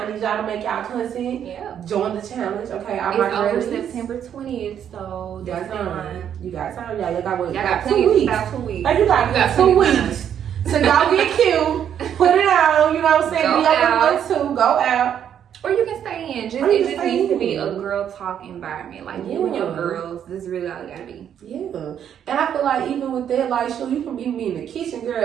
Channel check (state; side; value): quieter; left; 9.2 dB